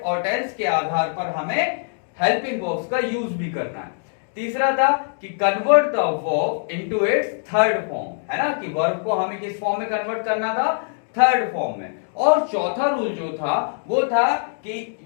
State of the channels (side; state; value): right; silent; digital silence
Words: और टेंस के आधार पर हमें हेल्पिंग वर्ब्स का यूज भी करना है। तीसरा था कि convert the verb into its third form, है ना, कि वर्ब को हमें किस फॉर्म में कन्वर्ट करना था? थर्ड फॉर्म में। और चौथा रूल जो था वो था कि